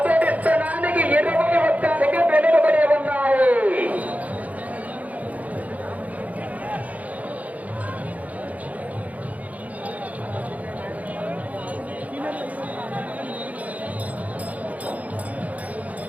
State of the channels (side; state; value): left; late; 0.072 ms